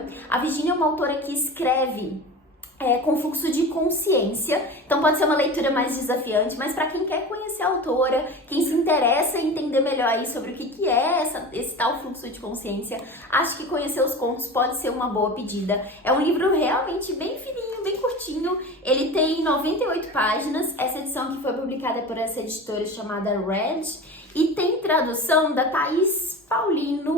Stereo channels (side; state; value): both; normal; correlation 0.32